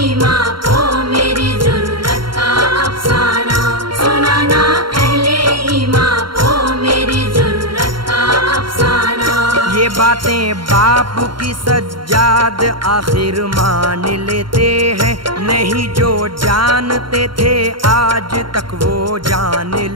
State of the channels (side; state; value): left; late; 0.73 ms